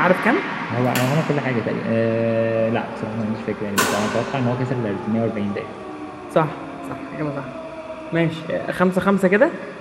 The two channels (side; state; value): both; identical; correlation 1.00